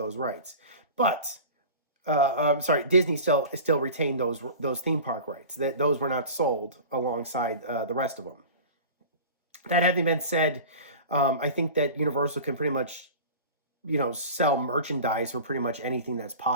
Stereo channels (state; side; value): inverted; both; correlation -0.36